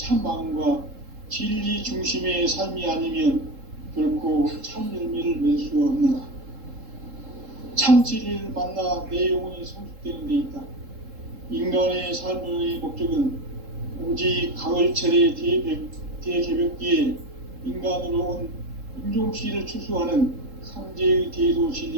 마음과 진리 중심의 삶이 아니면 결코 참 열매를 맺을 수 없노라. 참 진리를 만나 내 영혼이 성숙되는 데 있다. 인간의 삶의 목적은 오직 가을철의 대개벽기에 인간으로 온 인종씨를 추수하는 상제의 대도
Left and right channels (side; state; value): left; late; 3.7 ms